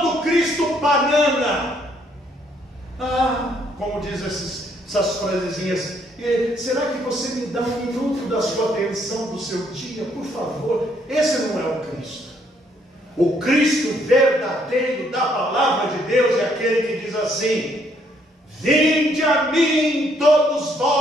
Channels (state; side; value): normal; both; correlation 0.69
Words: do Cristo banana. Como diz essas frasezinhas: será que você me dá um minuto da sua atenção do seu dia, por favor? Esse não é o Cristo. O Cristo verdadeiro da palavra de Deus é aquele que diz assim: vinde a mim todos